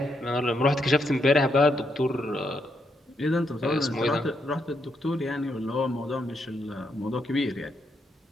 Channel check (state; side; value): normal; both; correlation 0.79